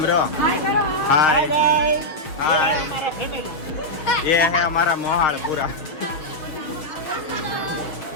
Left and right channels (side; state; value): right; late; 6.5 ms